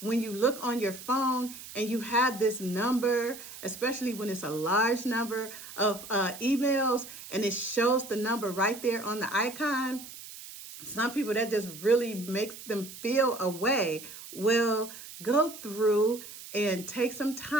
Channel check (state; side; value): noise; right; hiss, 14 dB below the sound